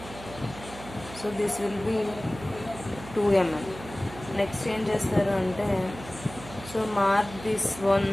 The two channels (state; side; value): noise; right; hum, 15 dB below the sound